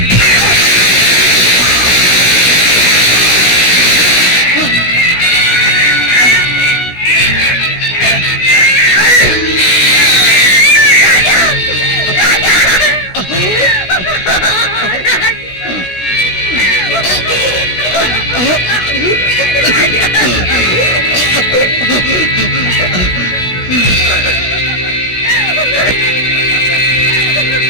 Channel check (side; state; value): right; late; 16 ms